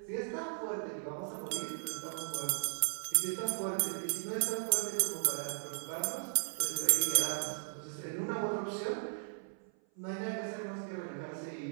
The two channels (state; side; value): silent; left; 53 dB below the other